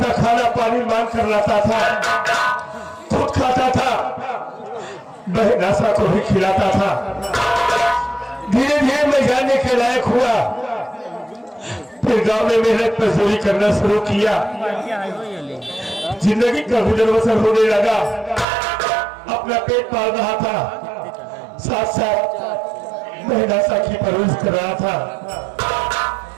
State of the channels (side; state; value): left; drops out; at 18.4 s